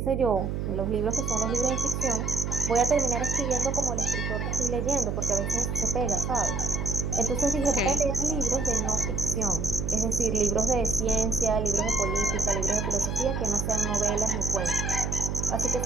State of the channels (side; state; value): right; noise; hum, 2 dB below the sound